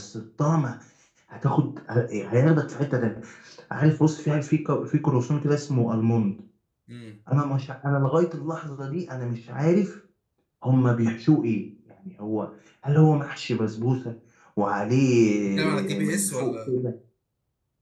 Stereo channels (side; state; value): both; identical; correlation 1.00